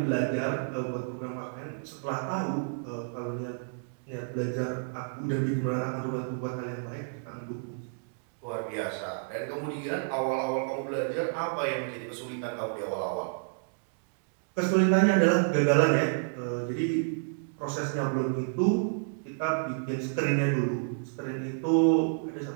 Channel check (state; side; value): silent; left; digital silence